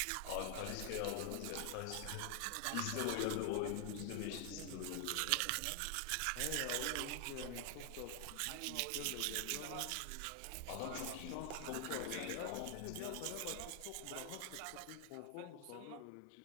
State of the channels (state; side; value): different; both; correlation 0.00